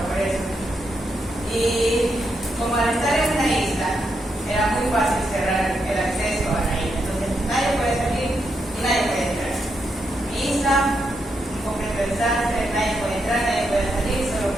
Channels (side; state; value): both; normal; correlation 0.82